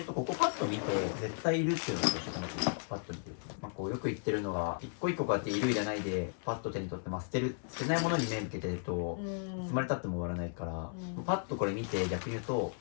うとここパッと見て絶対いるっていうのが一緒かなと思います。パッと見てると、まあ、こうよく言ってるのが一個一個こうやっているいらないでパッと手に取って、まあ、捨てないものに目向けてるといつまでたっても終わらないから、パッとこれ見て逆に言うと、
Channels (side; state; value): right; silent; 54 dB below the other